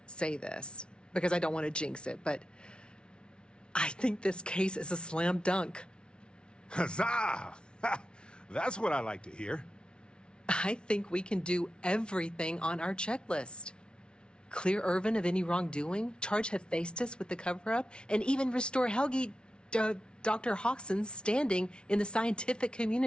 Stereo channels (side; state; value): right; late; 0.056 ms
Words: say this, because I don't want to jinx it, but I think this case is a slam dunk. Huzzah! That's what I like to hear. I think we can do everything on our checklist. Clear Irvin of any wrongdoing, charge Hephaestus with the cover-up, and even restore Helgi, Dr. Hawkson's standing in the scientific